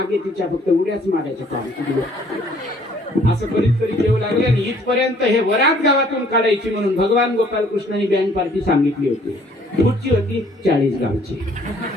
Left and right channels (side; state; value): both; normal; correlation 0.60